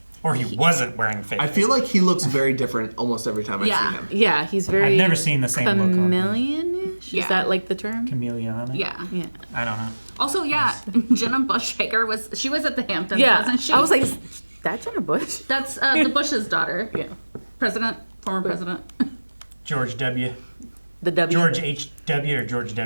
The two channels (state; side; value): inverted; both; correlation -1.00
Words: Or he wasn't wearing fake. I feel like he looks very different almost every time I see him. Yeah, he's very. I've never seen the same look on him. chameleon-ish? Yeah. Is that like the term? Chameleon. Yeah. Yeah. I don't know. Also, yeah, Jenna Bush Hager she was at the Hamptons, Yeah. wasn't she? I was like, is that Jenna Bush? That's the Bush's daughter. Yeah. Former president. George W. The W. George H.W. or George